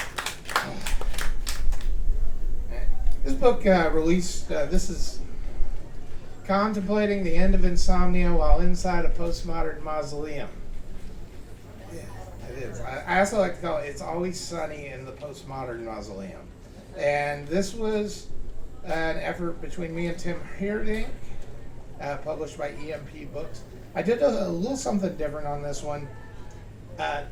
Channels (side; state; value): both; identical; correlation 1.00